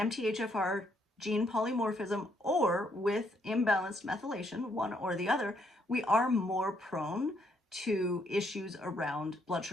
gene polymorphism or with imbalanced methylation, one or the other, we are more prone to issues around blood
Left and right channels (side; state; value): both; normal; correlation 0.72